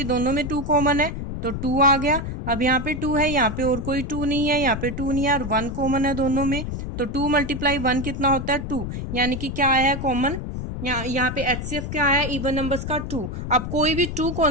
दोनों में 2 कॉमन है तो 2 आ गया. अब यहाँ पे 2 है, यहाँ पे और कोई 2 नहीं है, यहाँ पे 2 नहीं है और 1 कॉमन है दोनों में. तो 2 मल्टीप्लाई 1 कितना होता है? 2. यानी कि क्या आया है कॉमन? यहाँ पे एचसीएफ क्या आया? इवन नंबर्स का 2. आप कोई भी टू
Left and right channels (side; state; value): left; noise; rumble, 5 dB below the sound